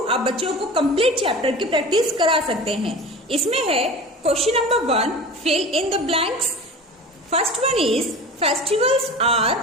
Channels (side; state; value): both; normal; correlation 0.35